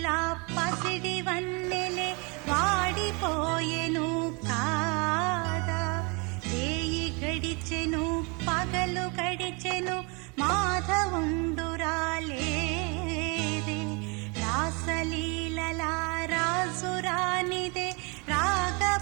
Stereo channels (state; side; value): quieter; left; 30.9 dB